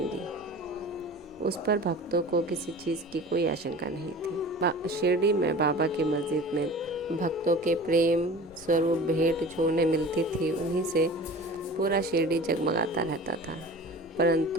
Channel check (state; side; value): normal; both; correlation 0.39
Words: उस पर भक्तों को किसी चीज़ की कोई आशंका नहीं थी। शिरडी में बाबा की मस्जिद में भक्तों के प्रेम स्वरूप भेंट जो उन्हें मिलती थी, उन्हीं से पूरा शिरडी जगमगाता रहता था।